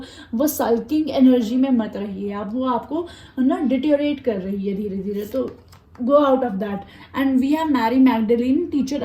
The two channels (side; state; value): both; identical; correlation 1.00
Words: वो सल्किंग एनर्जी में मत रहिए आप, वो आपको ना डिटेरियोरेट कर रही है धीरे धीरे। तो go out of that। and we have Mary Magdalene, teacher